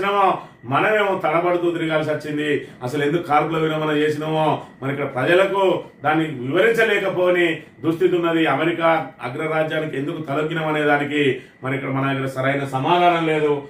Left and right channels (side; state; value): both; identical; correlation 1.00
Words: మనమేమో తడబడుతూ తిరగాల్సి వచ్చింది. అసలు ఎందుకు కాల్పుల విరమణ చేసినామో మరి ఇక్కడ ప్రజలకు దాన్ని వివరించలేకపోని దుస్థితి ఉన్నది. అమెరికా అగ్రరాజ్యానికి ఎందుకు తలొగ్గినామనే దానికి మరి ఇక్కడ మన దగ్గర సరైన సమాధానం లేదు.